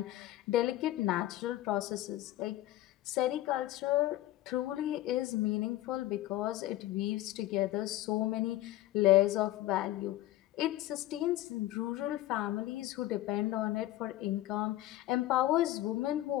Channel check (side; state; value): right; quieter; 15.3 dB